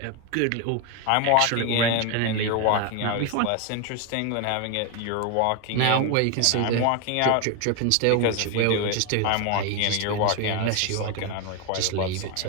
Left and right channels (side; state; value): both; different; correlation 0.01